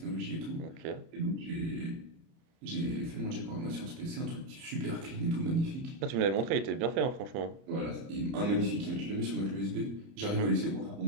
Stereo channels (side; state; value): left; late; 30 ms